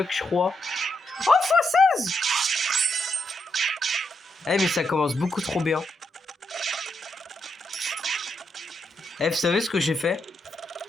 je crois. Oh, x16. Eh, mais ça commence beaucoup trop bien. Eh, vous savez ce que j'ai fait?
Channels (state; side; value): normal; both; correlation 0.81